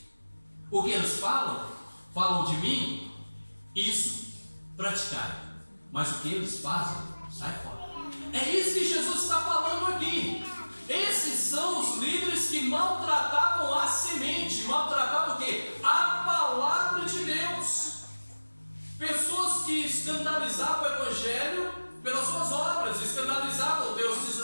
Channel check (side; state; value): both; inverted; correlation -1.00